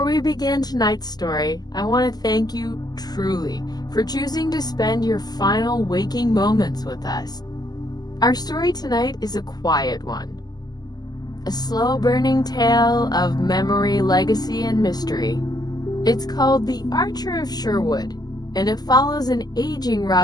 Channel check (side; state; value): right; late; 0.20 ms